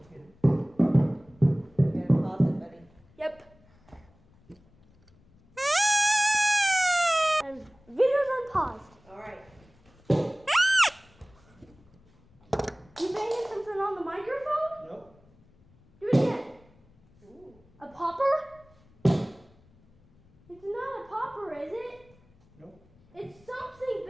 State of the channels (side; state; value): left; noise; rumble, 30 dB below the sound